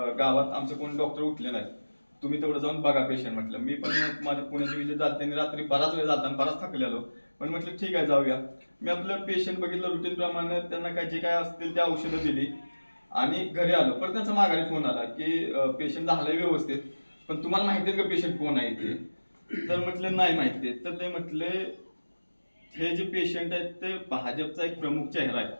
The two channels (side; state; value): both; inverted; correlation -1.00